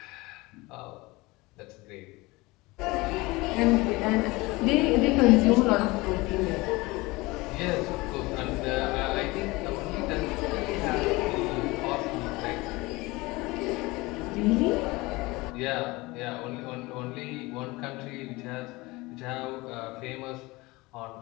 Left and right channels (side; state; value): right; quieter; 22.3 dB